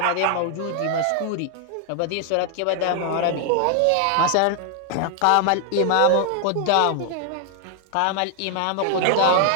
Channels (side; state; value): both; different; correlation 0.00